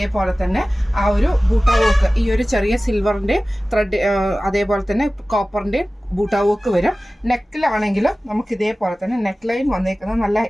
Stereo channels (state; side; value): normal; both; correlation 0.97